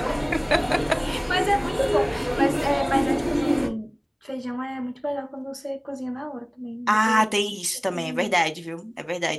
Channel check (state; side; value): identical; both; correlation 1.00